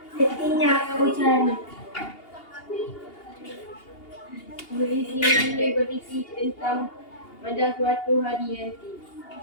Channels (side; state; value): right; late; 2.8 ms